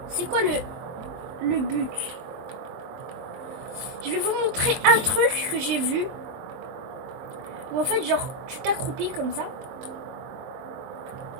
C'est quoi le but? Je vais vous montrer un truc que j'ai vu. Où en fait, genre, tu t'accroupis comme ça.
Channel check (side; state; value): left; late; 23 ms